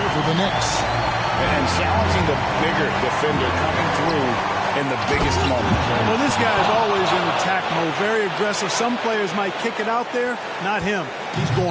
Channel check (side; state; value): both; identical; correlation 1.00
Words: for the Knicks. And challenging the bigger defender coming through in the biggest moment. Well, this guy is always in attack mode, very aggressive. Some players might kick it out there, not him. He's